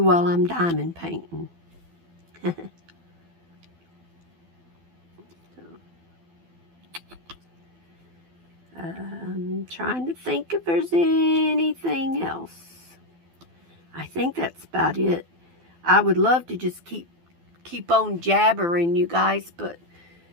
while I'm diamond painting. I'm trying to think if there's anything else. I think that's about it. I would love to just keep on jabbering, you guys, but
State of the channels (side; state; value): left; late; 12 ms